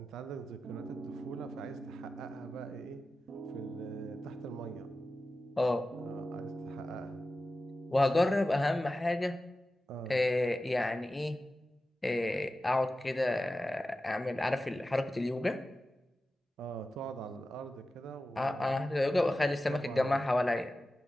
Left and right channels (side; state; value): both; normal; correlation 0.93